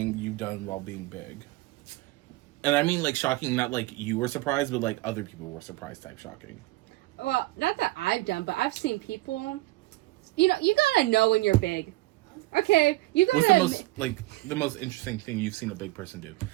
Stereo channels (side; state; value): left; quieter; 19.7 dB